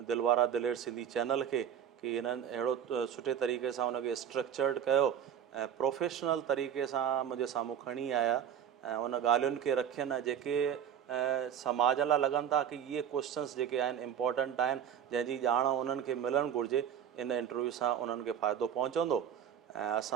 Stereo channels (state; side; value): quieter; left; 9.0 dB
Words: दिलवारा दिलेर सिंधी चैनल खे कि हिननि अहिड़ो सुठे तरीक़े सां हुनखे स्ट्रक्चर्ड कयो ऐं प्रोफेशनल तरीक़े सां मुंहिंजे साम्हूं खणी आया ऐं उन ॻाल्हियुनि खे रखियनि जेके समाज लाइ लॻनि था कि इहे क्वेश्चन्स जेके आहिनि इम्पोर्टेंट आहिनि, जंहिंजी ॼाण उन्हनि खे मिलणु घुरिजे। इन इंटरव्यू सां उन्हनि खे फ़ाइदो पहुचंदो ऐं